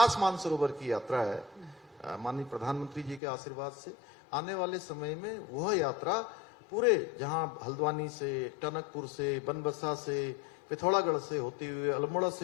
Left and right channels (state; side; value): drops out; right; at 3.2 s